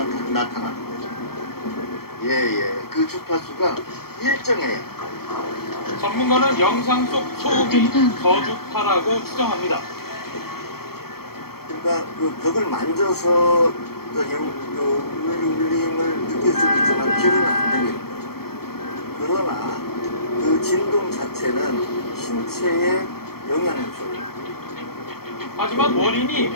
다 나타나는 거죠. 그 주파수가 일정해요. 전문가는 영상 속 소음이 저주파라고 추정합니다. 그러니까 그 벽을 만져서 울림을 느낄 수는 있지만 귀로는 안 들리는 거죠. 그러나 그 진동 자체는 신체에 영향을 줘요. 하지만 원인이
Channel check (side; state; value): right; late; 0.94 ms